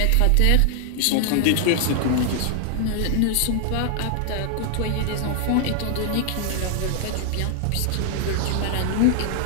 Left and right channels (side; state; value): both; different; correlation 0.00